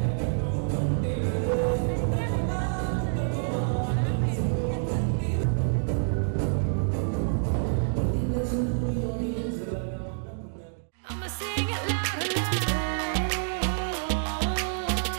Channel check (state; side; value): silent; left; digital silence